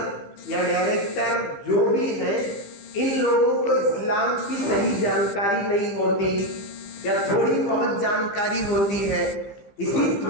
یا ڈائریکٹر جو بھی ہیں، ان لوگوں کو اسلام کی صحیح جانکاری نہیں ہوتی یا تھوڑی بہت جانکاری ہوتی ہے۔ اسی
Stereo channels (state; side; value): late; right; 15 ms